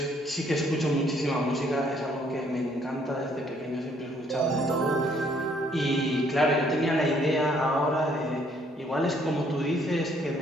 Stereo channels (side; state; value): both; normal; correlation 0.65